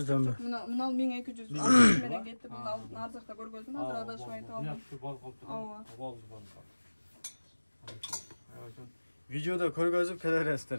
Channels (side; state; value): both; inverted; correlation -1.00